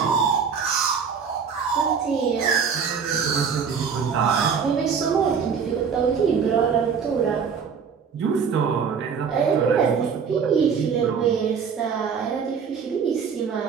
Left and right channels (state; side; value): quieter; left; 6.4 dB